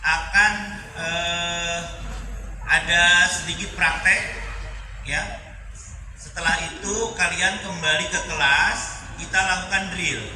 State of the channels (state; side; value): identical; both; correlation 1.00